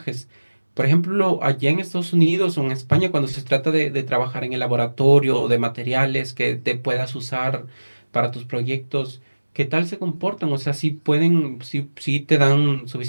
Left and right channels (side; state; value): both; inverted; correlation -1.00